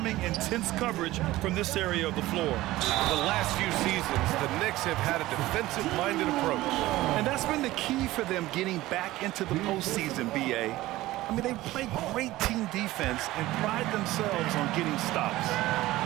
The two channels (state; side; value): quieter; left; 17.1 dB